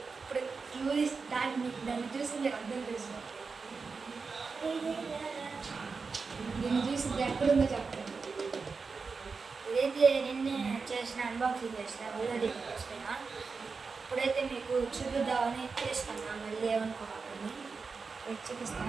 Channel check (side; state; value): left; quieter; 4.7 dB